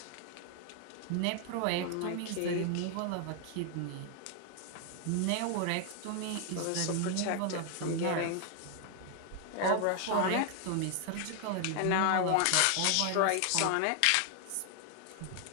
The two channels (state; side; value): different; both; correlation 0.00